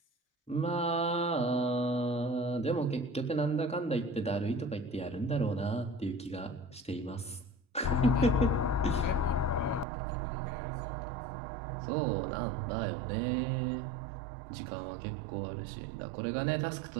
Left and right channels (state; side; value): drops out; left; at 9.9 s